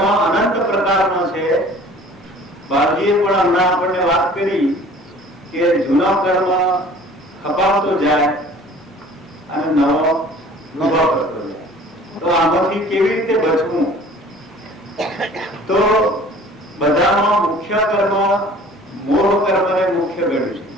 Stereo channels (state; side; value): normal; both; correlation 0.48